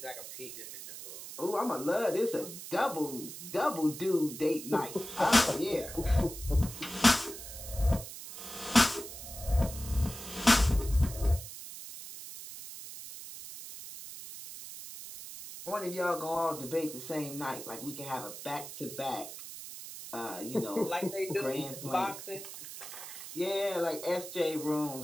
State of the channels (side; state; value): right; noise; hiss, 11 dB below the sound